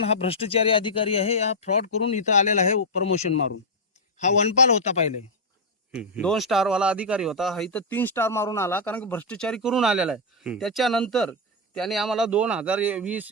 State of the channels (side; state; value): both; normal; correlation -0.03